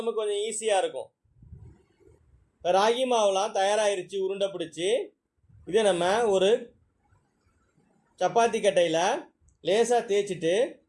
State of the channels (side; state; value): both; identical; correlation 1.00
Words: நமக்கு கொஞ்சம் ஈஸியாக இருக்கும். ராகி மாவுலாம் தயாராகிருச்சு உருண்டை பிடிச்சி. இதை நம்ம ஒரு சப்பாத்தி கட்டையில் லேசாக தேய்ச்சிட்டு